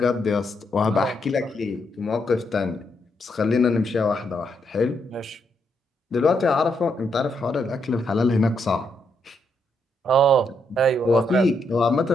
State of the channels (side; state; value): both; normal; correlation 0.77